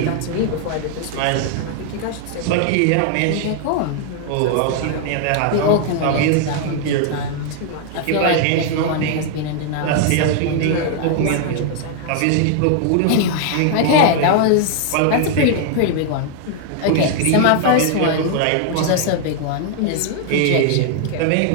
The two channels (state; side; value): different; both; correlation 0.00